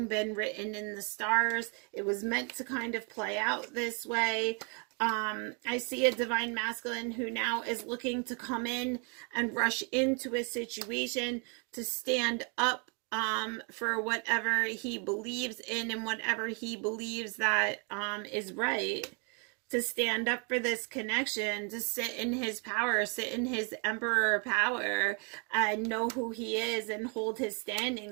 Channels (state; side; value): quieter; left; 36.1 dB